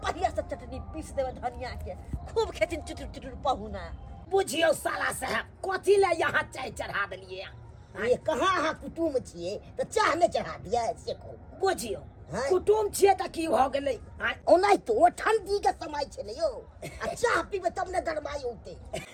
बढ़िया से चटनी पीस देबै धनिया के खूब खेथिन चुटुर पहुना। बुझियो साला साहब कथी ले यहाँ चाय चढ़ा देलिए? ये कहाँ अहाँ कुटुम छियै त चाह नहीं चढ़ा दिया से को? बुझियो कुटुम छिए त की भ गेलै? ओनाइ तो ठंडी के समय छै ने यो, आ चाह पीबे तब ने गरमाई होते।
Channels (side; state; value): both; identical; correlation 1.00